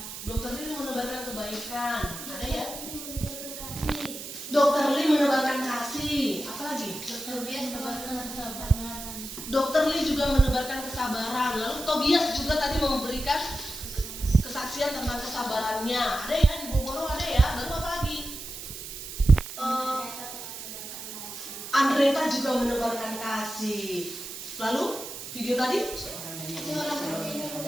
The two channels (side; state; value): right; noise; hiss, 10 dB below the sound